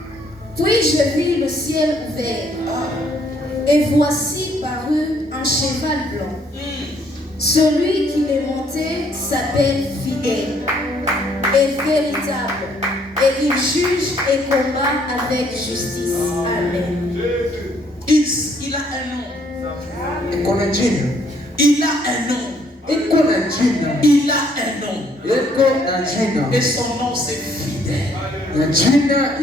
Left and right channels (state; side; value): normal; both; correlation 0.66